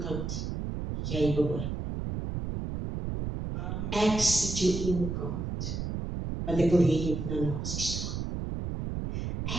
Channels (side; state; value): right; noise; rumble, 4 dB below the sound